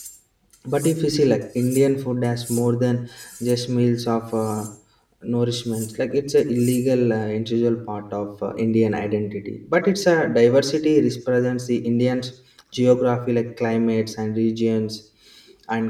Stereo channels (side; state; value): both; identical; correlation 1.00